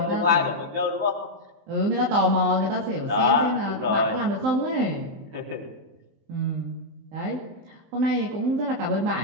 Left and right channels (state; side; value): late; left; 19 ms